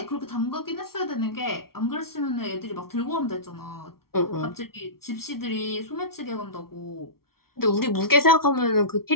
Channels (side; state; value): right; late; 0.94 ms